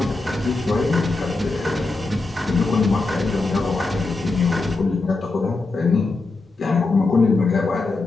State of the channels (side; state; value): right; quieter; 3.4 dB